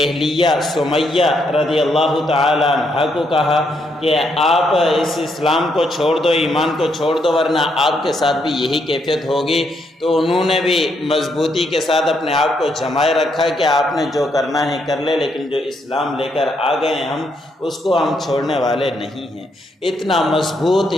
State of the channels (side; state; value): both; normal; correlation 0.76